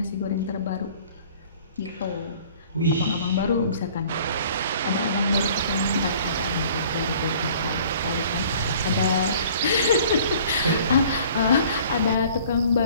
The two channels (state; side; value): inverted; both; correlation -0.51